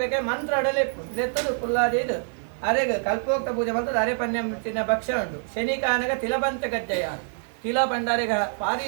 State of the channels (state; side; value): silent; left; digital silence